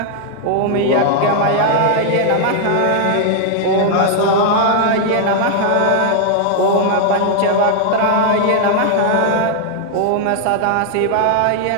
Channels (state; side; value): different; both; correlation 0.00